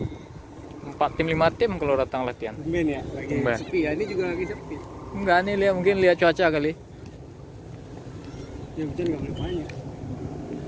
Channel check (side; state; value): both; identical; correlation 1.00